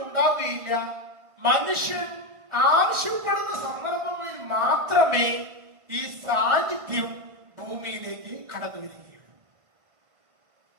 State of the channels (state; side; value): late; left; 1.5 ms